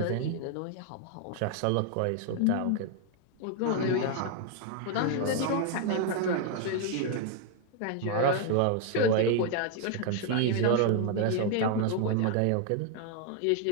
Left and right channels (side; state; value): both; different; correlation 0.00